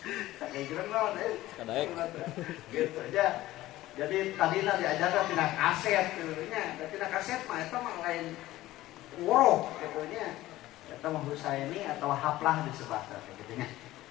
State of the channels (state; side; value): quieter; right; 16.2 dB